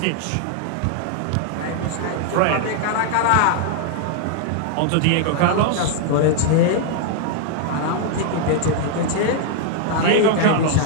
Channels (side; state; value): both; different; correlation 0.00